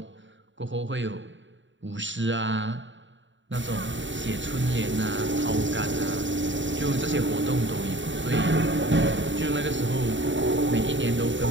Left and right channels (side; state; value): left; late; 0.54 ms